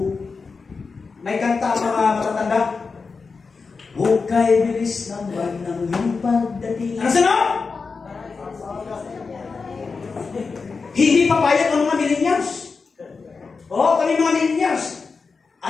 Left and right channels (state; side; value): quieter; right; 4.7 dB